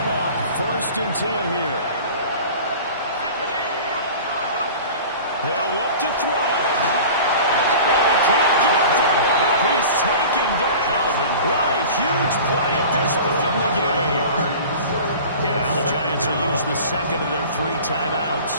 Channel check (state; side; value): inverted; both; correlation -0.39